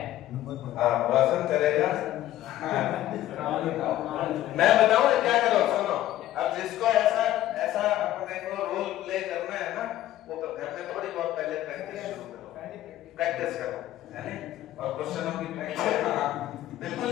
रोशन करेगा। मैं बताऊं क्या करो, सुनो। अब जिसको ऐसा अपने को रोल प्ले करना है ना, वो घर में थोड़ी बहुत पहले प्रैक्टिस करो, है ना? और क्वेश्चनों की प्रैक्टिस बिल्कुल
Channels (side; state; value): right; quieter; 13.8 dB